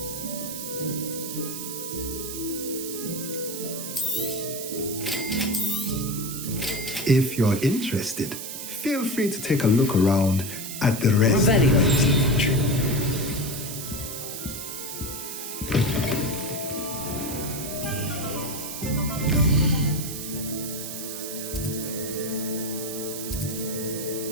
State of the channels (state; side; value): noise; right; hiss, 7 dB below the sound